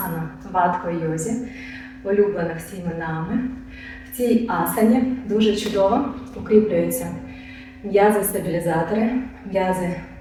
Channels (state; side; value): identical; both; correlation 1.00